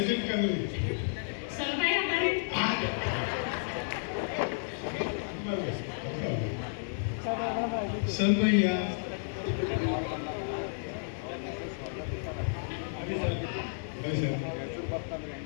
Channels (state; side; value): silent; right; digital silence